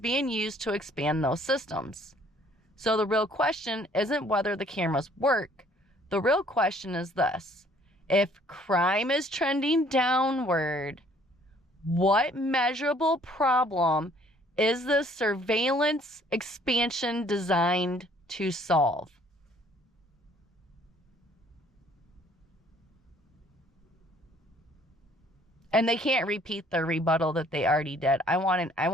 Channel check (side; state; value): both; normal; correlation 0.59